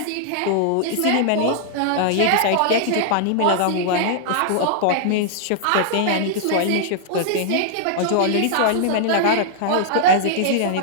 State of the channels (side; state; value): both; different; correlation -0.01